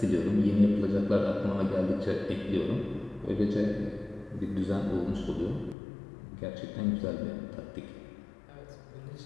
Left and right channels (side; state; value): right; drops out; at 5.8 s